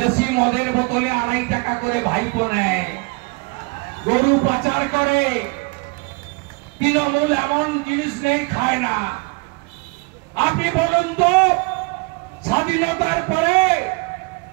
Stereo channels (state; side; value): quieter; left; 29.6 dB